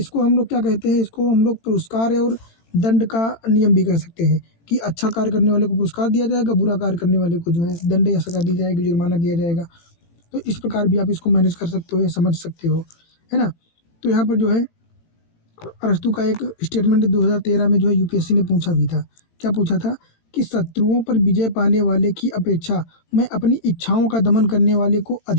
हम लोग क्या कहते हैं? इसको हम लोग पुरस्कार और दंड का नियम भी कह सकते हैं, कि अच्छा कार्य करने वाले को पुरस्कार दिया जाएगा, बुरा कार्य करने वाले को जो है दंड या सज़ा दी जाएगी, जुर्माना दिया जाएगा। तो इस प्रकार भी आप इसको मैनेज कर सकते हो या समझ सकते हो, है ना? तो यहाँ पर जो है अरस्तु का एक स्टेटमेंट 2013 में जो है यूपीएससी ने पूछा भी था। क्या पूछा था कि शत्रुओं पर विजय पाने वाले की अपेक्षा मैं अपनी इच्छाओं का दमन करने वाले को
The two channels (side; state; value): right; late; 18 ms